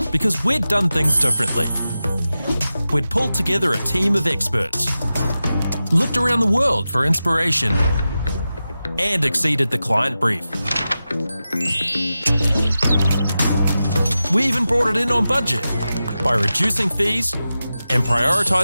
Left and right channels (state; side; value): inverted; both; correlation -0.93